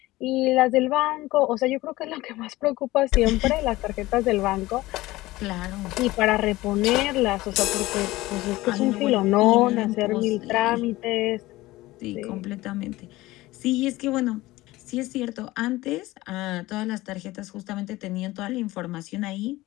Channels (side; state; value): right; quieter; 18.5 dB